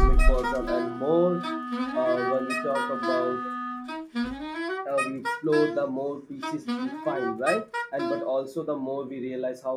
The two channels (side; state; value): both; identical; correlation 1.00